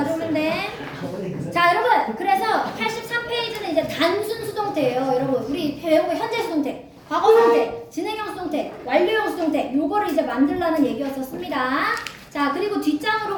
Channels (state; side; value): identical; both; correlation 1.00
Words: 돼. 자, 여러분. 그래서 83페이지는 이제 단순 수동태 수동태예요. 여러분 우리 배우고 현재 수동태, 과거 수동태, 진행형 수동태, 완료형 수동태 요거를 이제 만들라는 얘기였었습니다. 자 그리고 뒷장으로